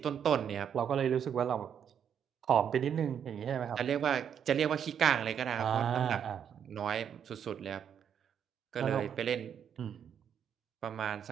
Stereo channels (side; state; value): left; quieter; 8.4 dB